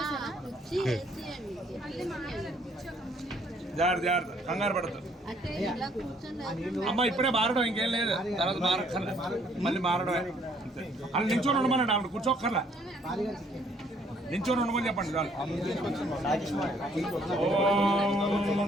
కంగారు పడదు అమ్మ, ఇప్పుడే మారడం ఇంకేం లేదు, తర్వాత మారక్కర్లే, మళ్ళీ మారడమే. అలా నించొని ఉండమనండి, ఆవిడ కూర్చోక్కర్లా, నించొని ఉండమని చెప్పండి చాలు.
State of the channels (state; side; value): normal; both; correlation 0.64